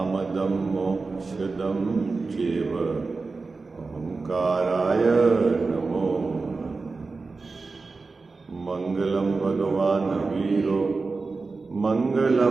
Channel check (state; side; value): quieter; left; 4.0 dB